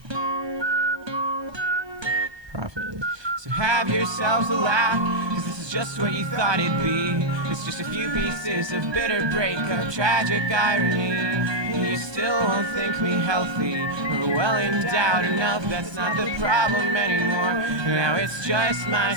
profit. So have yourselves a laugh, cause this is just what you thought it'd be. It's just a few pieces of bitter breakup, tragic irony. And you still won't think me healthy or well endowed enough. That's not the problem anymore. Now it's just my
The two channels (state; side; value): late; left; 1.2 ms